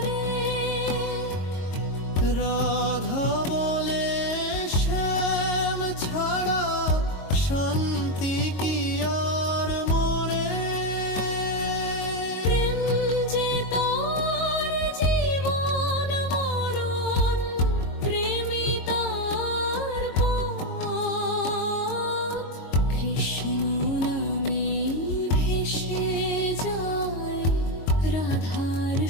রাধা বলে শ্যাম ছাড়া শান্তি কি আর মোরে। প্রেম যে তার জীবন মরণ, প্রেমী তার পথ। কৃষ্ণ নামে ভেসে যায় রাধার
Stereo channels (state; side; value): late; right; 22 ms